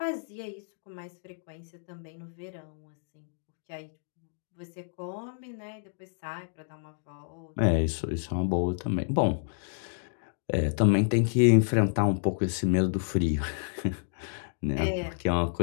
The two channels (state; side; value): silent; right; digital silence